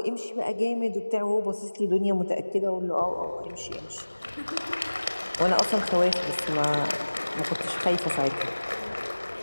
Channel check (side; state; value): both; inverted; correlation -1.00